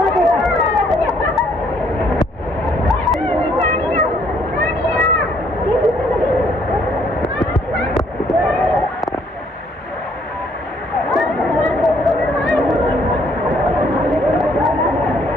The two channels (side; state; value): both; normal; correlation 0.66